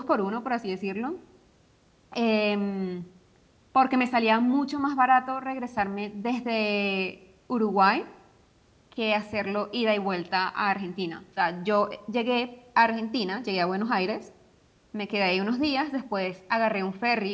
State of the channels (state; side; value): identical; both; correlation 1.00